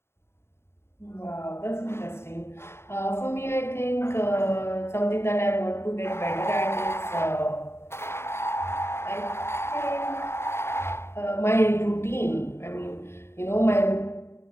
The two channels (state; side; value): late; right; 0.12 ms